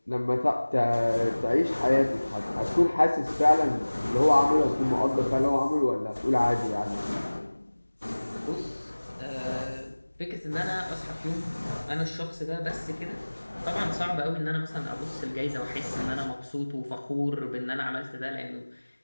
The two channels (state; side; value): inverted; both; correlation -1.00